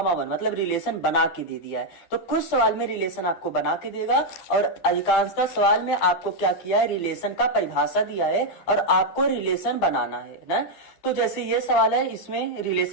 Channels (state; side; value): late; right; 12 ms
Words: 1 मतलब रिलेशन बना के दे दिया है। तो कुछ सवाल में रिलेशन आपको बना के देगा और अधिकांशतः सवाल में आपको क्या किया है, रिलेशन का परिभाषा दिया है और आपको रिलेशन बनाना है ना। तो जैसे ये सवाल है, इसमें